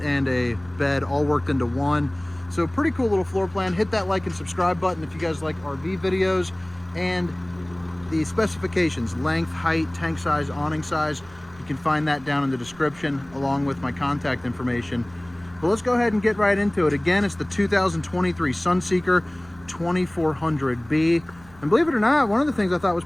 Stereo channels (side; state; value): right; noise; rumble, 24 dB below the sound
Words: and a bed all worked into one. So pretty cool little floor plan. Hit that like and subscribe button if you guys like RV videos, and the specifications, length, height, tank size, awning size, you can find that down in the description along with my contact information. But let's go ahead and get right into it. Again, it's the 2023 Sunseeker 2400B. And believe it or not, one of the things I thought